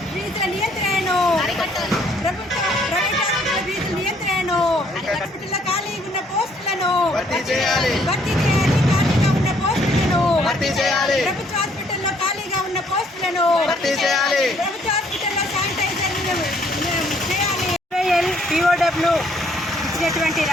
ఫీజుల నియంత్రణను ప్రైవేట్ హాస్పిటల్ ఫీజుల నియంత్రణను హాస్పిటల్లో ఖాళీగా ఉన్న పోస్టులను భర్తీ చేయాలి. ఖాళీగా ఉన్న పోస్టులను భర్తీ చేయాలి. ప్రభుత్వ హాస్పిటల్లో ఖాళీగా ఉన్న పోస్టులను భర్తీ చేయాలి. ప్రభుత్వ హాస్పిటల్లో శానిటైజర్ చేయాలి. పిఓడబ్ల్యూ ఇచ్చినటువంటి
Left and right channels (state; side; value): normal; both; correlation 0.65